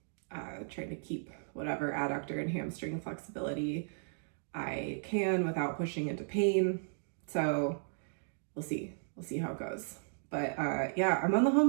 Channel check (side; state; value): left; silent; digital silence